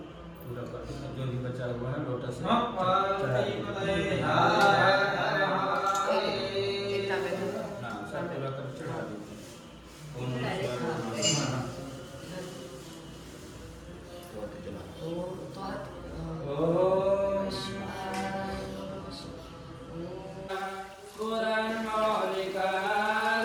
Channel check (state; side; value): identical; both; correlation 1.00